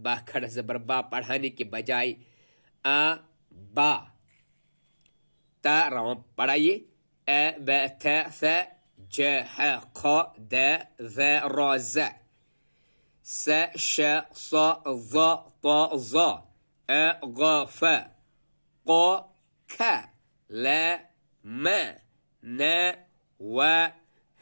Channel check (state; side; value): inverted; both; correlation -1.00